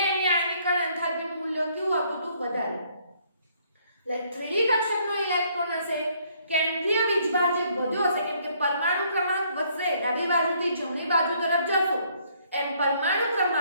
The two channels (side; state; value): both; inverted; correlation -0.66